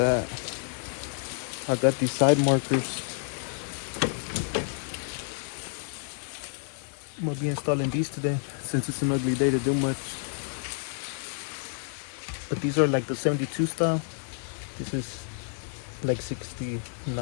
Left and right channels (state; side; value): silent; right; digital silence